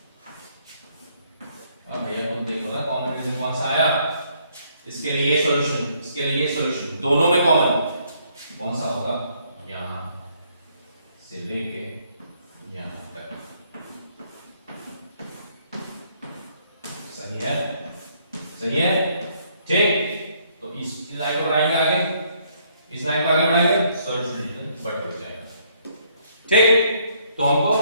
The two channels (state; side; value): inverted; both; correlation -0.68